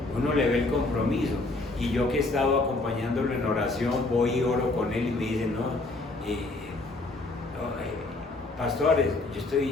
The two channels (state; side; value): quieter; right; 3.1 dB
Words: uno le ve el compromiso. Y yo que he estado acompañándolo en oración, voy y oro con él y me dice, pastores, yo